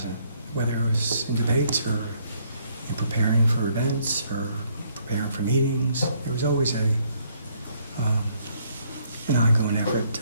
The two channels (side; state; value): both; inverted; correlation -0.68